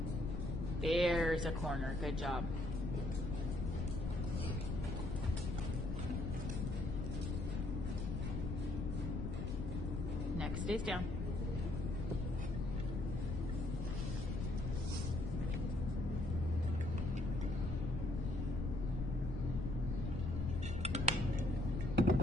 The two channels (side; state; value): left; noise; rumble, 2 dB below the sound